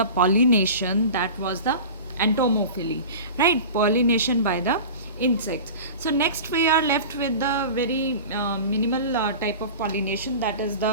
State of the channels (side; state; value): both; inverted; correlation -0.35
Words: pollination, that was the entomophily, right? Pollination by the insects. So, next we are left with the very minimal type of pollination, that is